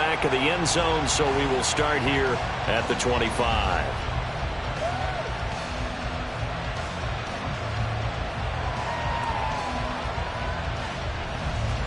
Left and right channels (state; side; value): identical; both; correlation 1.00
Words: of the end zone, so we will start here at the 25.